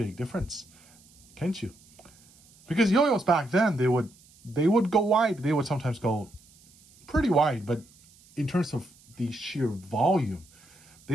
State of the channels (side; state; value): right; noise; hiss, 27 dB below the sound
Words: difference, can't you? Because yo-yos back then, they would go wide. They would sometimes go pretty wide, but in terms of the sheer volume,